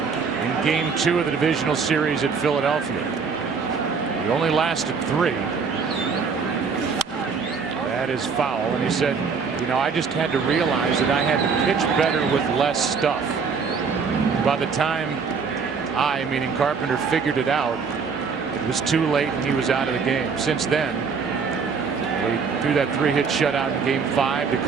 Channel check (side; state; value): left; quieter; 5.5 dB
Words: in Game 2 of the divisional series at Philadelphia. He only lasted 3. That is foul, and he said, you know, I just had to realize that I had to pitch better with less stuff. By the time I, meaning Carpenter, figured it out, it was too late and he was out of the game. Since then, he threw that 3-hit shutout in Game 5 to